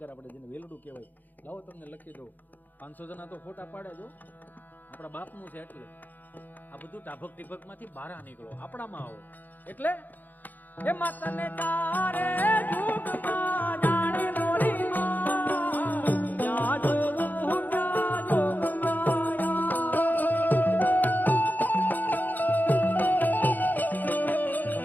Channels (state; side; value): late; right; 0.085 ms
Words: આપણે જેને વેલડું કહેવાય. લાવો તમને લખી દો, 500 જણા તો ફોટા પાડે જો, આપણા બાપનું છે. એટલે આ બધું ટાભક ટીભકમાંથી બહાર નીકળો, આપણામાં આવો. એટલે એ માતાને તારે જુગમાં જાણે મોરી માં જાજો